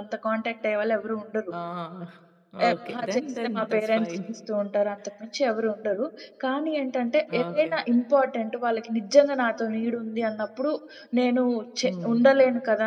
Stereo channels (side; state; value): both; identical; correlation 1.00